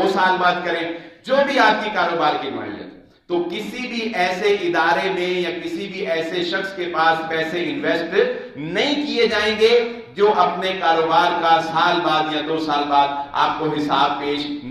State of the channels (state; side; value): identical; both; correlation 1.00